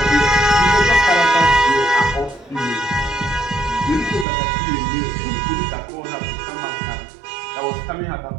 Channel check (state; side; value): drops out; left; at 4.2 s